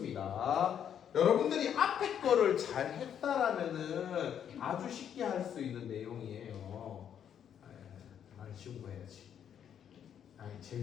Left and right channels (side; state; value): right; quieter; 9.0 dB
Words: 여러분들이 앞에 거를 잘 했다라면은 아주 쉽게 할 수 있는 내용이에요. 난 쉬운 거 해야지. 아니,